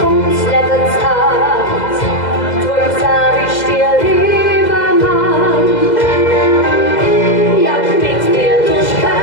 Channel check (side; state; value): right; late; 2.0 ms